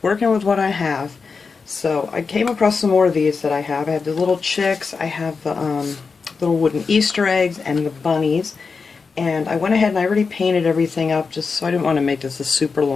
with what I have. So I came across some more of these that I have. I have the little chicks, I have the little wooden Easter eggs, and the bunnies. And I went ahead and I already painted everything up, just so I didn't want to make this a super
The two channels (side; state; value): right; quieter; 4.9 dB